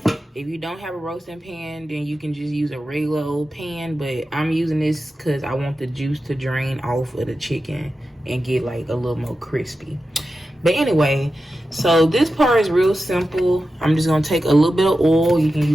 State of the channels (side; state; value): both; normal; correlation 0.92